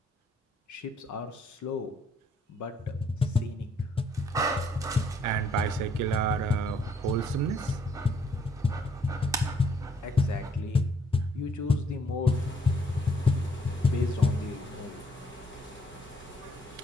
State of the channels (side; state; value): both; normal; correlation 0.67